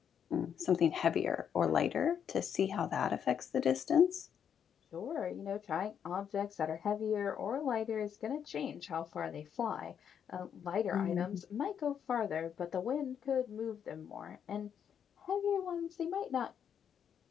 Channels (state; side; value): quieter; right; 8.2 dB